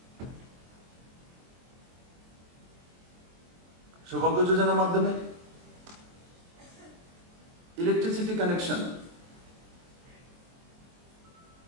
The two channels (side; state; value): left; late; 23 ms